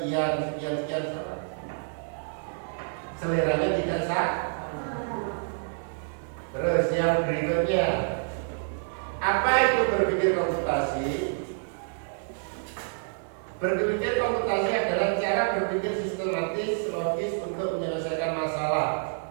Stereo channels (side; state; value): left; silent; 59 dB below the other